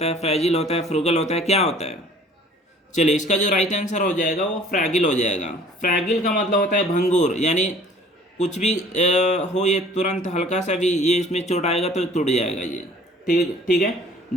है, फ्रेजिल होता है, फ्रूगल होता है, क्या होता है। चलिए इसका जो राइट आंसर हो जाएगा वो फ्रैगिल हो जाएगा। फ्रैगिल का मतलब होता है भंगुर, यानी कुछ भी हो ये तुरंत हल्का सा भी ये इसमें चोट आएगा तो टूट जाएगा ये, ठीक है।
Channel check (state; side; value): normal; both; correlation 0.52